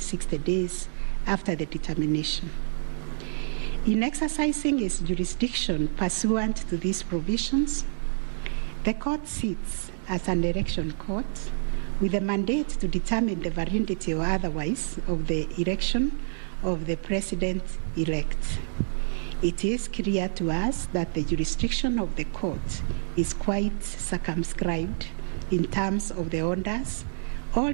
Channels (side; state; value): left; silent; digital silence